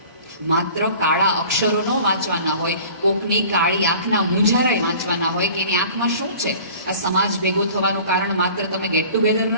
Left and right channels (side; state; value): both; inverted; correlation -0.45